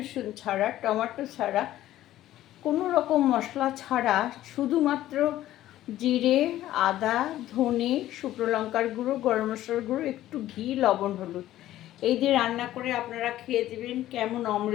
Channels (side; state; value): right; quieter; 13.9 dB